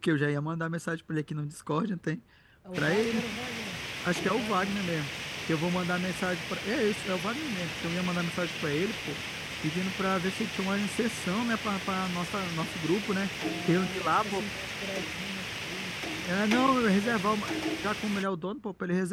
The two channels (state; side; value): identical; both; correlation 1.00